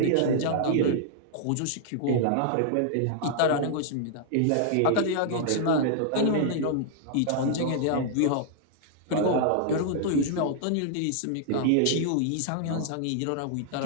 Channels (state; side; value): different; both; correlation -0.01